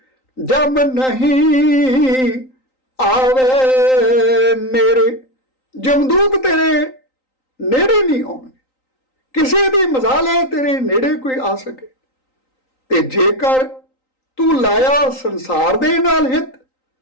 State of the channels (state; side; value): late; right; 3.9 ms